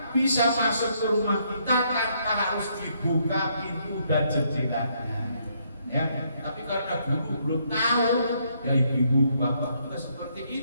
bisa masuk ke rumah kita tanpa harus dibuka pintu dan jendelanya. Ya, tapi karena dulu belum tahu, ya ibu-ibu, bapak juga seperti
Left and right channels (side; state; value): both; inverted; correlation -0.72